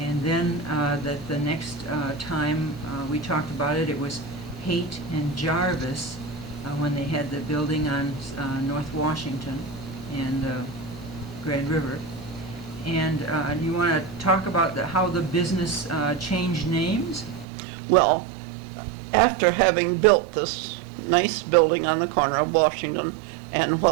then that the next time we talked about it, it was Haite and Jarvis when they had the building on North Washington and Grand River. And you want to talk about how the business changed names? Well, after having built this nice building on the corner of Washington and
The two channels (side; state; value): left; drops out; at 17.4 s